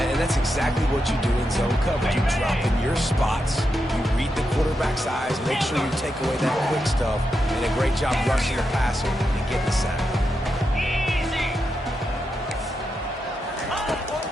that's exactly what you do in zone coverage. You drop in your spots, you read the quarterback's eyes, make sure you take away that quick stuff, and a great job rushing the passer and getting the sack. Easy.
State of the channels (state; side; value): normal; both; correlation 0.86